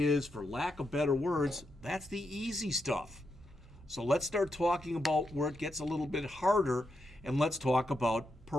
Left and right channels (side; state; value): both; normal; correlation 0.83